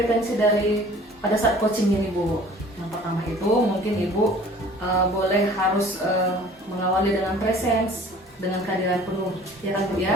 dari pada saat coaching ini Bu. Yang pertama itu mungkin ibu boleh harus mengawali dengan presence, dengan kehadiran penuh, ya kan Bu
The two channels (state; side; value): normal; both; correlation 0.49